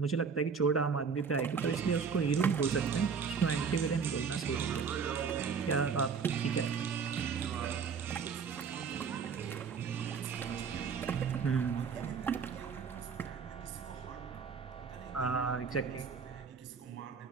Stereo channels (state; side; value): quieter; left; 6.0 dB